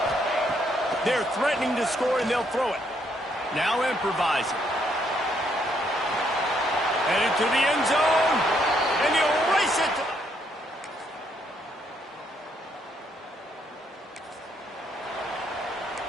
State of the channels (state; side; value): normal; both; correlation 0.72